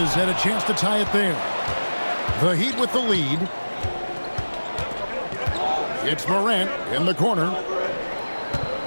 had a chance to tie it there. The Heat with the lead. It's Morant in the corner.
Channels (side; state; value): both; inverted; correlation -1.00